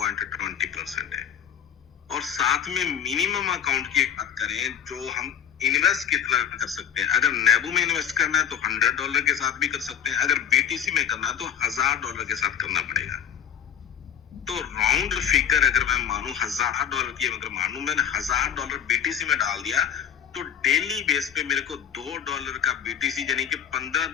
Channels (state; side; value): quieter; right; 9.0 dB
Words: है। और साथ में मिनिमम अकाउंट की बात करें, जो हम इन्वेस्ट कितना कर सकते हैं। अगर नेबू में इन्वेस्ट करना है तो $100 के साथ भी कर सकते हैं, अगर BTC में करना है तो $1000 के साथ करना पड़ेगा। तो राउंड फिगर अगर मैं मानूं $1000 की, अगर मानूं मैंने $1000 BTC में डाल दिया तो डेली बेस पे मेरे को $2 का BTC यानी कि 15